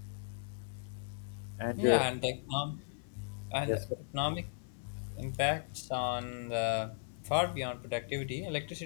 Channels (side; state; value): right; silent; 53 dB below the other